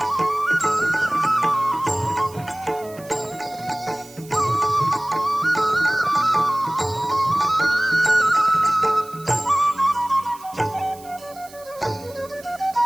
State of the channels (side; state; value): right; noise; hiss, 21 dB below the sound